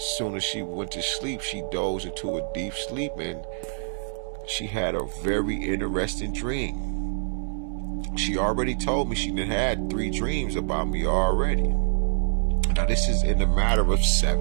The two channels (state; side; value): silent; left; digital silence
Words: soon as she went to sleep, she dozed into a deep sleep and she had a very interesting dream. She already told me she done had 3 dreams about me already. Now this is in a matter of